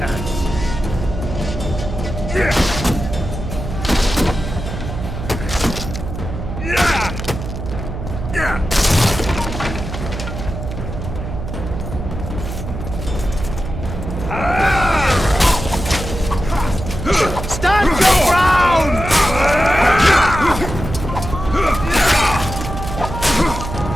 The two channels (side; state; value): right; noise; hum, 7 dB below the sound